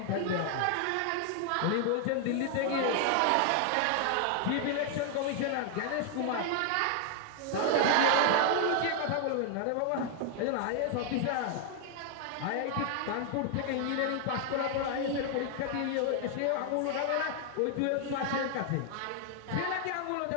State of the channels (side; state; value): both; different; correlation 0.00